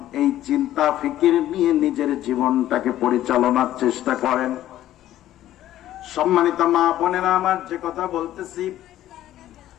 এই চিন্তা ফিকির নিয়ে নিজের জীবনটাকে পরিচালনার চেষ্টা করেন। সম্মানিত মা বোনেরা, আমার যে কথা বলতেছি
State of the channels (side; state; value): right; quieter; 13.2 dB